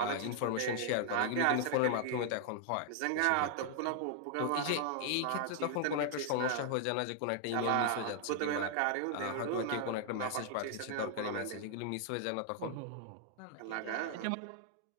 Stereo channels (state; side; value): different; both; correlation 0.00